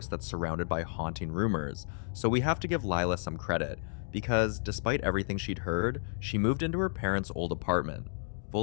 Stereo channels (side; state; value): right; silent; digital silence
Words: that's surrounded by haunting rumors, so we have to give Lila some credit, because despite everything she'd heard, she moved into her parents' old apartment,